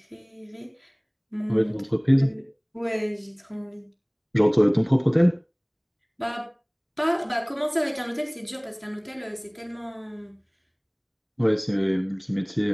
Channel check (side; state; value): both; identical; correlation 1.00